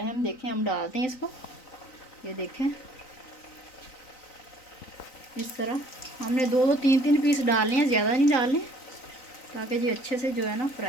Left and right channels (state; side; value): late; right; 3.9 ms